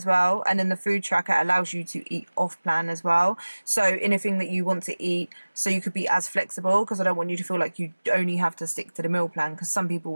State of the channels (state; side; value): inverted; both; correlation -1.00